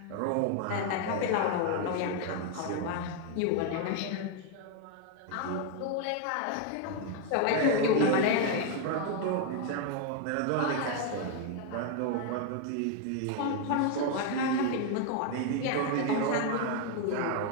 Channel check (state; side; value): different; both; correlation 0.01